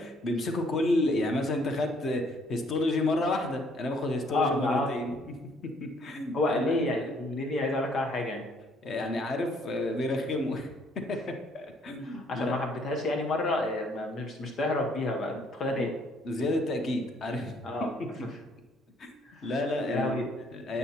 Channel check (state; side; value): normal; both; correlation 0.64